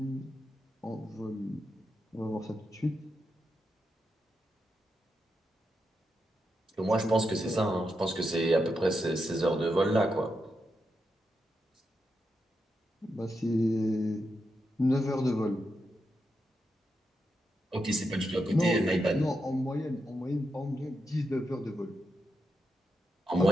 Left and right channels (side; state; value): both; normal; correlation 0.85